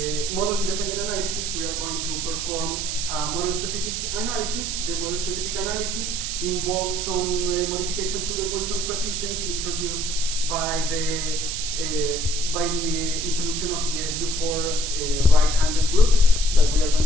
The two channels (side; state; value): right; noise; hiss, 3 dB below the sound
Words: model-independent analysis, we are going to perform model-specific analysis. The model-specific analysis involves some modification to the Wilson coefficients introduced by the introduction of the SU4 right-handed group that we are